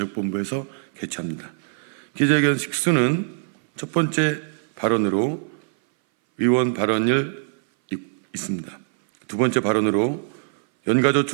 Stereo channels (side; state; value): left; silent; 60 dB below the other